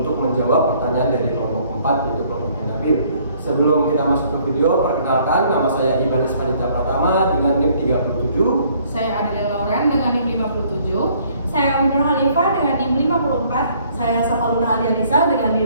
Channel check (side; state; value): both; inverted; correlation -0.62